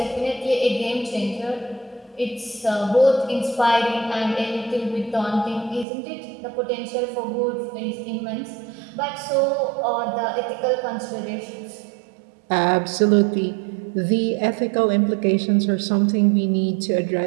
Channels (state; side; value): drops out; left; at 5.9 s